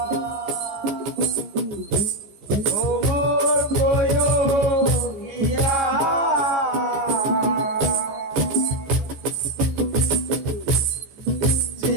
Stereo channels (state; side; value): late; left; 14 ms